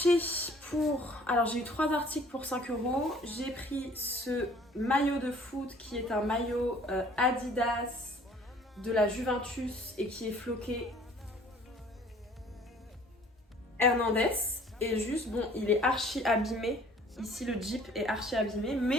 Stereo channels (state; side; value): normal; both; correlation 0.54